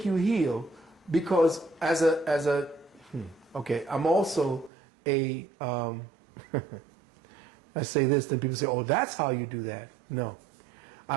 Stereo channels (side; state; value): left; drops out; at 4.7 s